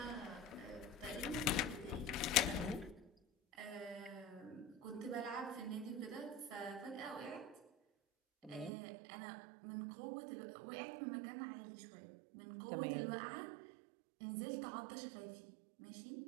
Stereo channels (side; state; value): left; drops out; at 8.7 s